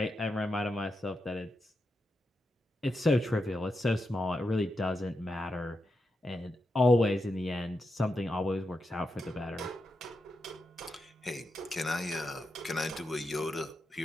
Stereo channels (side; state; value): both; normal; correlation 0.87